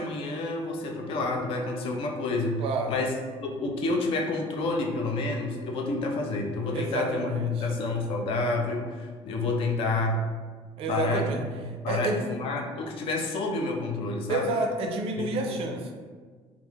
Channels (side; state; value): both; normal; correlation 0.39